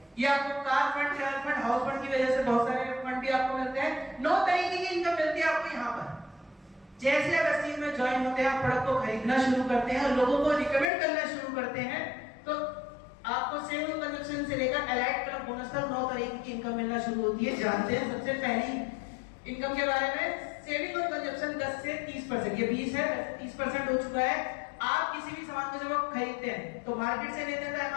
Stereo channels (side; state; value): right; drops out; at 10.9 s